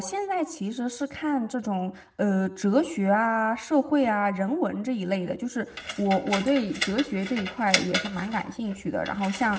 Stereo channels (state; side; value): identical; both; correlation 1.00